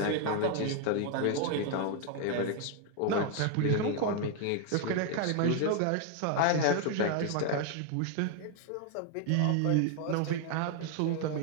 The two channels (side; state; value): both; different; correlation 0.00